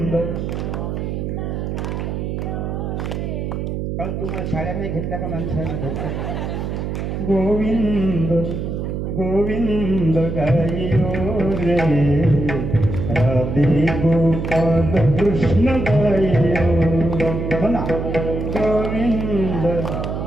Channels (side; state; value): right; noise; hum, 3 dB below the sound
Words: कारण तुम्हाला शाळा नाही घेतल्या का माणसाने घेतल्या. गोविंद गोविंद गाइयो रे, राधे गोपाल कृष्ण गाइयो, म्हणा गोविंद.